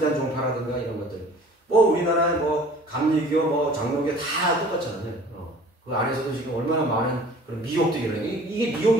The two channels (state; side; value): normal; both; correlation 0.48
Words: 종파라든가 이런 것들. 뭐 우리나라에 뭐 감리교, 뭐 장로교 다 똑같잖아요. 그 안에서도 지금 얼마나 많은 그런 미혹들이 일어나요. 이게